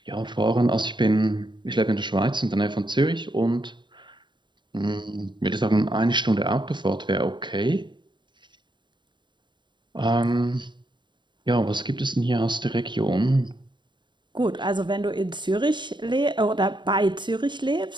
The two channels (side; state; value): left; late; 0.22 ms